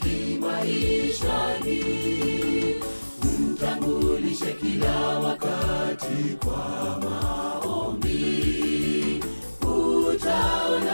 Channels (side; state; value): both; inverted; correlation -1.00